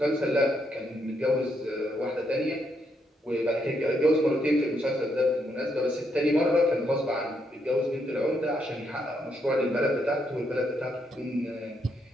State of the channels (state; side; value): normal; both; correlation 0.77